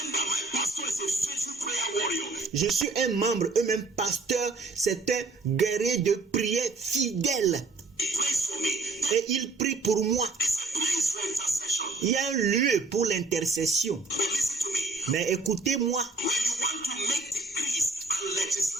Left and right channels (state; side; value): quieter; left; 3.6 dB